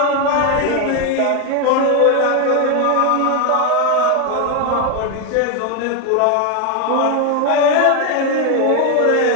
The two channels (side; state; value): both; different; correlation 0.01